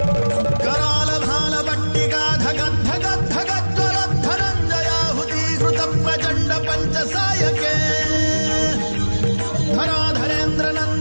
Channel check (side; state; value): both; inverted; correlation -1.00